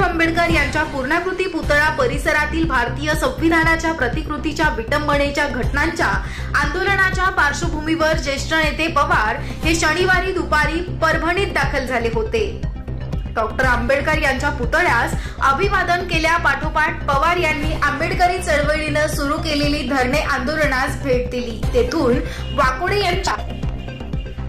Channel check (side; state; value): both; identical; correlation 1.00